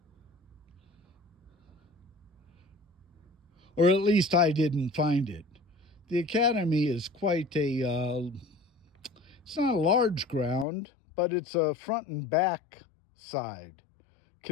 Or at least I didn't find it. The academy is quite a, it's not a large ground, but it's a front and back side,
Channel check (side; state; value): right; drops out; at 10.7 s